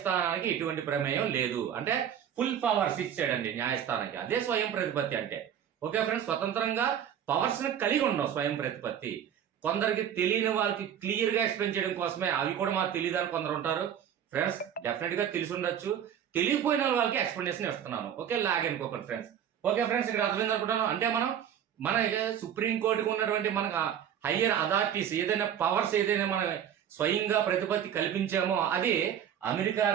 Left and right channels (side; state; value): left; quieter; 9.3 dB